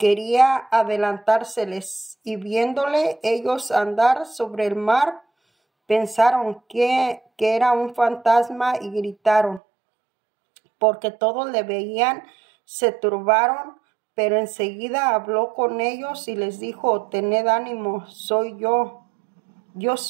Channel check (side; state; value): left; drops out; at 9.6 s